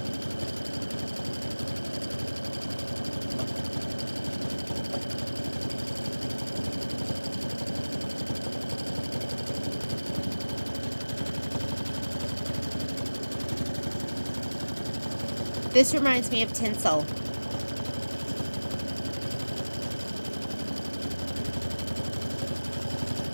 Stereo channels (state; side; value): inverted; both; correlation -1.00